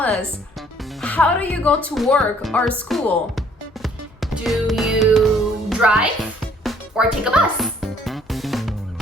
how do you go to work or school? Do you drive or take a bus?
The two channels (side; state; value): both; normal; correlation 0.61